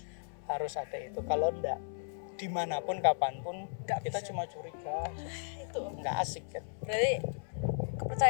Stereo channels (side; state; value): right; silent; 54 dB below the other